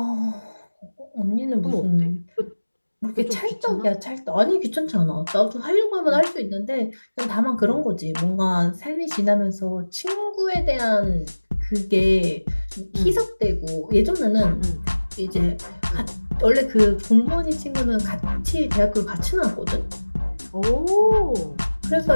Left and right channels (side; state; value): both; inverted; correlation -1.00